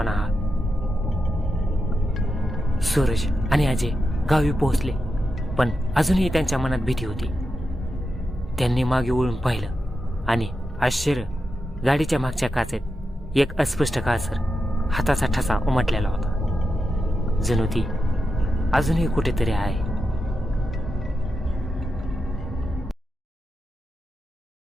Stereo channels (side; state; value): both; normal; correlation 0.88